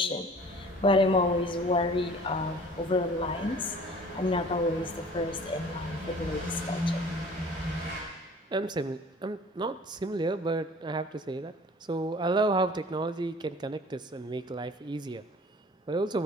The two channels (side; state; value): both; normal; correlation 0.48